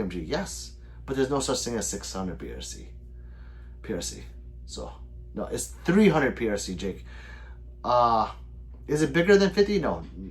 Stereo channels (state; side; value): identical; both; correlation 1.00